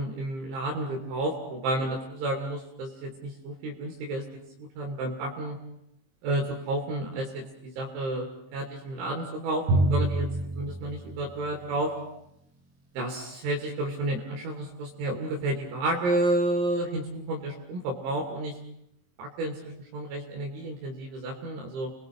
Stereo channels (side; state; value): left; late; 23 ms